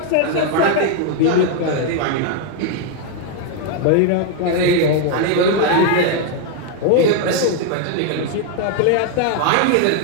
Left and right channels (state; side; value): different; both; correlation 0.01